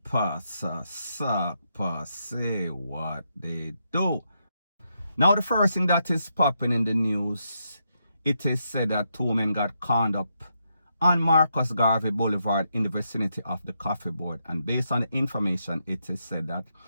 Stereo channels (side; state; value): both; inverted; correlation -0.81